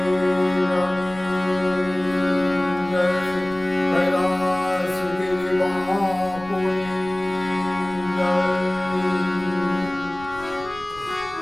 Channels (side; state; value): left; noise; rumble, 19 dB below the sound